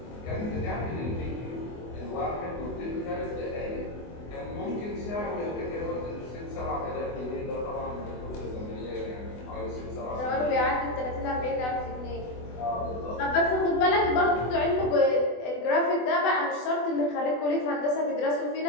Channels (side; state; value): right; late; 24 ms